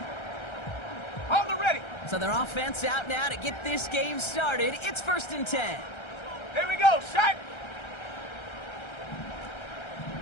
On the ready. So their offense out now to get this game started. It's 1st and 10. Here we go, set.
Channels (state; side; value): late; right; 1.3 ms